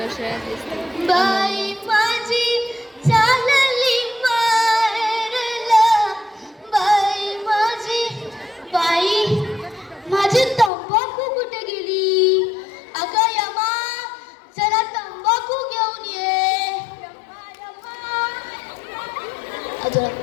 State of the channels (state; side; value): drops out; right; at 10.7 s